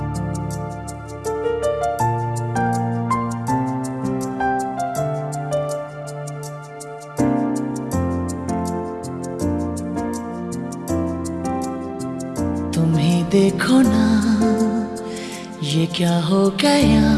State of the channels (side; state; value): both; identical; correlation 1.00